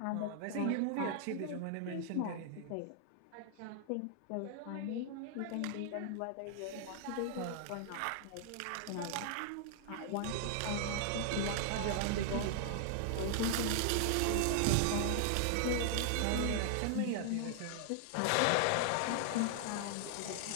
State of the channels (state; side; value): different; both; correlation -0.01